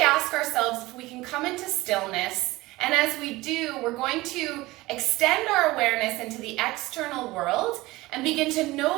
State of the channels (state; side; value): quieter; left; 19.7 dB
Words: ask ourselves if we can come into stillness, and as we do, we're going to extend our awareness into the external world and begin to